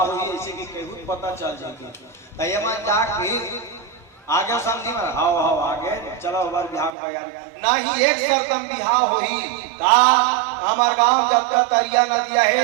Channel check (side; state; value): left; drops out; at 6.9 s